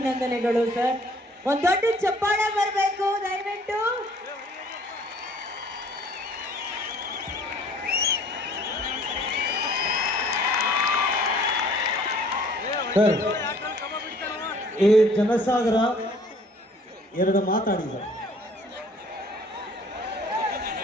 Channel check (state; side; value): normal; both; correlation 0.56